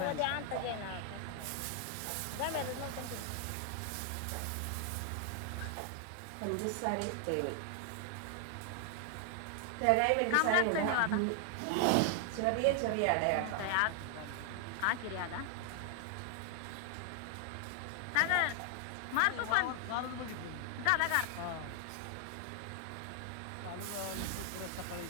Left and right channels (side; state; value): both; different; correlation 0.00